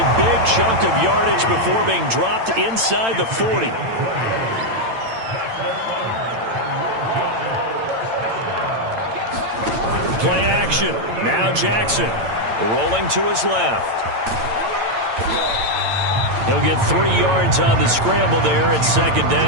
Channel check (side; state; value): left; late; 8.9 ms